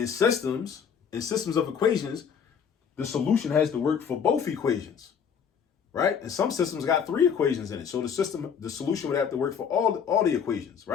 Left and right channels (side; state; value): right; quieter; 7.2 dB